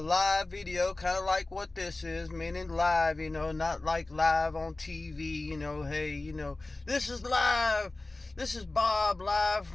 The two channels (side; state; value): right; quieter; 3.0 dB